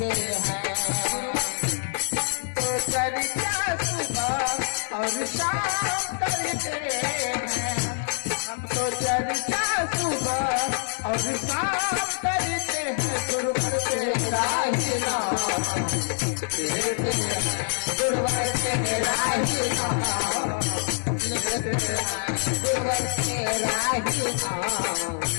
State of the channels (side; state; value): right; silent; 61 dB below the other